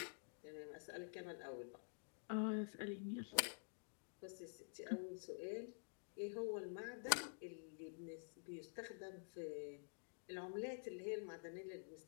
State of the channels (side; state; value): right; silent; digital silence